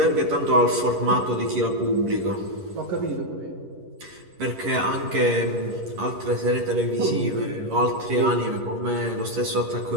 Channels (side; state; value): left; late; 11 ms